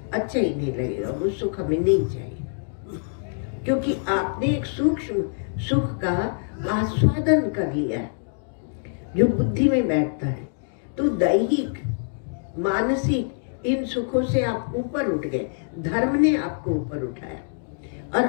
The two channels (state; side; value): silent; right; digital silence